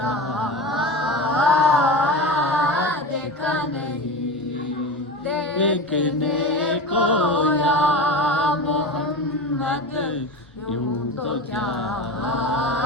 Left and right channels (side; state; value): both; normal; correlation 0.27